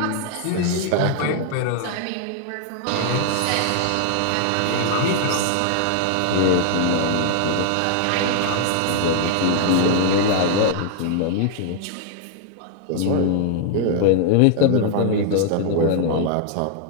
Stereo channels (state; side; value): different; both; correlation 0.00